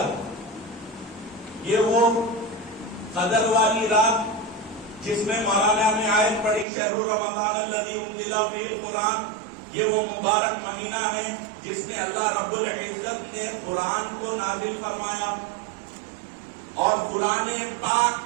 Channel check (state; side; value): drops out; left; at 6.7 s